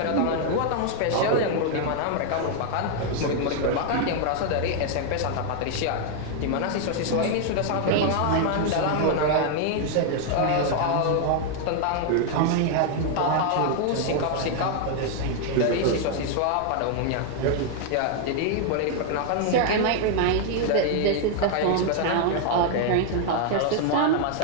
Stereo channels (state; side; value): different; both; correlation 0.00